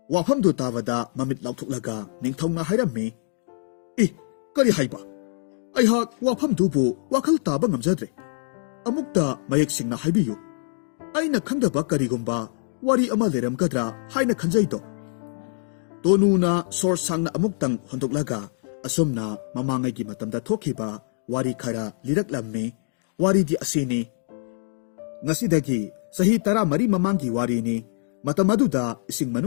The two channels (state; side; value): silent; right; digital silence